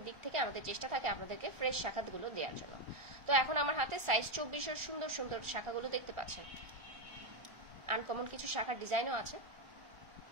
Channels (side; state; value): left; late; 1.4 ms